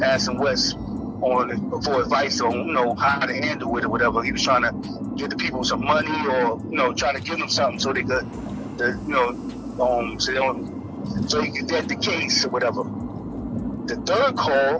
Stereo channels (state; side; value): identical; both; correlation 1.00